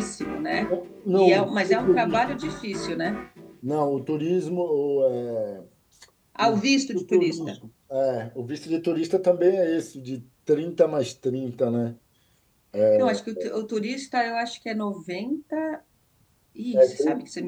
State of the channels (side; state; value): both; identical; correlation 1.00